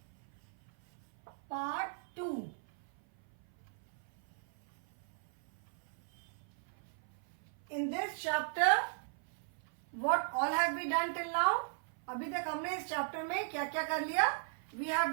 part 2. In this chapter, what all have we done till now? अभी तक हमने इस chapter में क्या क्या कर लिया? We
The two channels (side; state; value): left; silent; 53 dB below the other